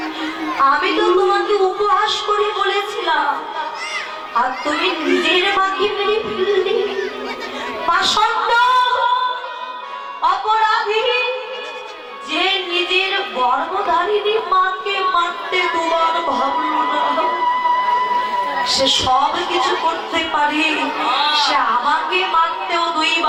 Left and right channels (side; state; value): both; identical; correlation 1.00